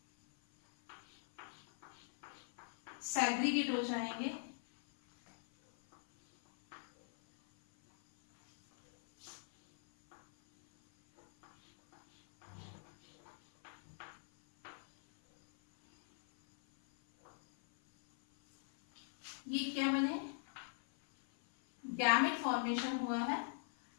सेग्रीगेट हो जाएंगे। ये क्या बने, गैमेट फॉर्मेशन हुआ है।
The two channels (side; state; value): right; silent; 50 dB below the other